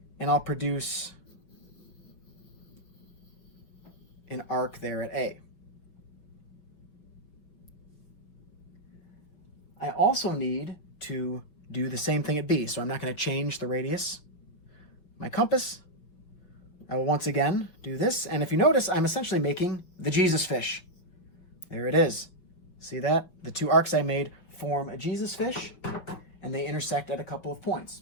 and I'll produce an arc there at A. I also need to do the same thing at B, so I'm not going to change the radius. My compass, I will once again do this, and if you notice, I'm essentially making the Jesus fish. There it is. See that? The two arcs I made form a Jesus fish, and they intersect at a couple of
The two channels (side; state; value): right; late; 5.7 ms